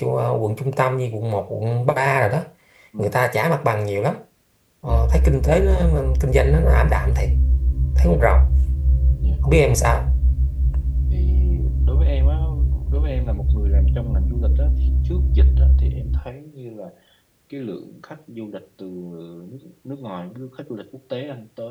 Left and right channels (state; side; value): identical; both; correlation 1.00